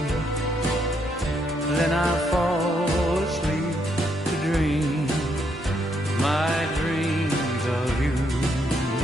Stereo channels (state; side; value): normal; both; correlation 0.75